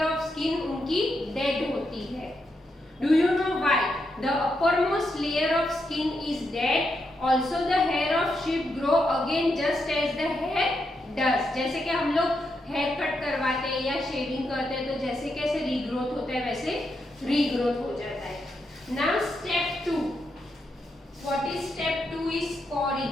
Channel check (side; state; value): both; normal; correlation 0.83